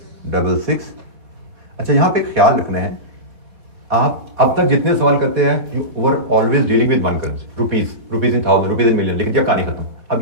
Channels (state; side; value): late; left; 4.0 ms